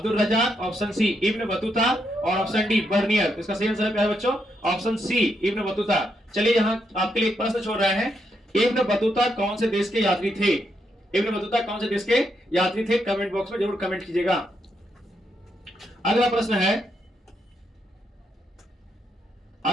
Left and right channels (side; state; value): both; normal; correlation 0.80